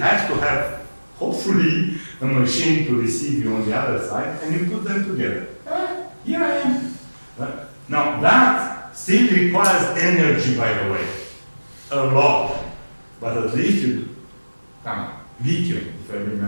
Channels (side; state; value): both; inverted; correlation -1.00